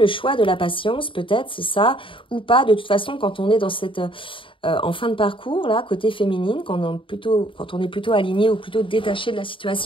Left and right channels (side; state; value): right; late; 0.25 ms